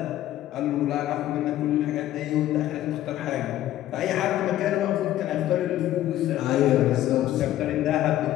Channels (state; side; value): quieter; right; 13.5 dB